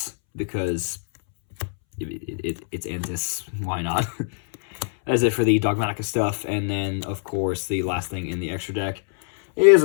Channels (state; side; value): silent; right; 62 dB below the other